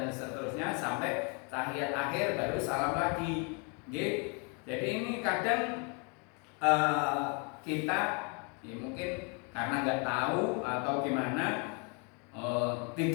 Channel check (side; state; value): right; quieter; 35.0 dB